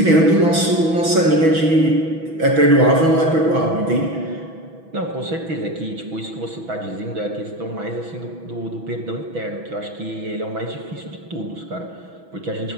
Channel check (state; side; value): late; left; 6.1 ms